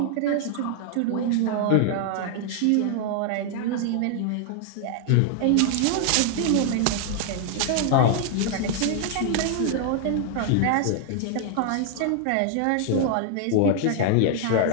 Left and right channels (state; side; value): different; both; correlation 0.00